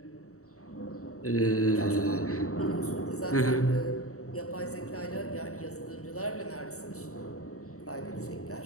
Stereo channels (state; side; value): late; right; 0.65 ms